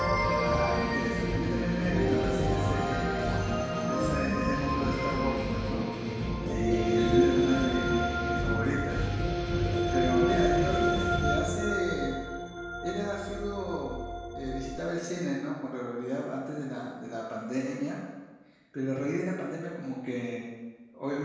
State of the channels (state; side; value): identical; both; correlation 1.00